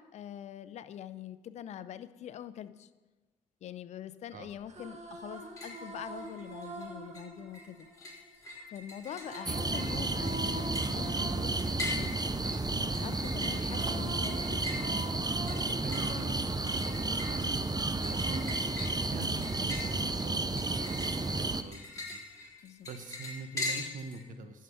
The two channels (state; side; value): normal; both; correlation 0.39